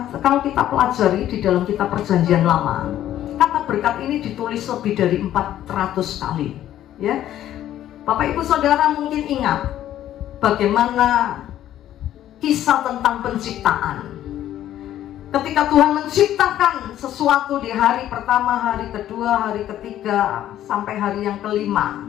kita pelajari di dalam kitab Perjanjian Lama, kata berkat ini ditulis lebih dari 400 kali. Ya, Bapak Ibu Saudara mungkin ingat bagaimana kisah tentang penciptaan. Ketika Tuhan menciptakan sesuatu di hari pertama, hari kedua, hari ketiga, sampai hari yang kelima,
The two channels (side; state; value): right; quieter; 12.2 dB